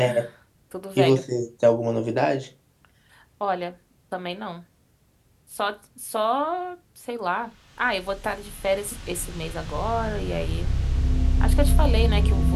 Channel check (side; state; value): both; identical; correlation 1.00